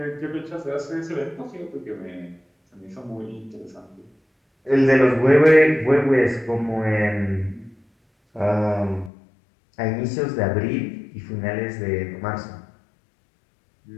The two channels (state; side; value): drops out; right; at 9.1 s